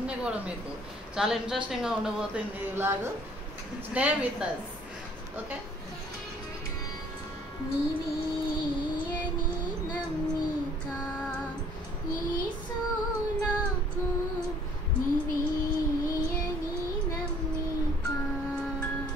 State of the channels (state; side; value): normal; both; correlation 0.57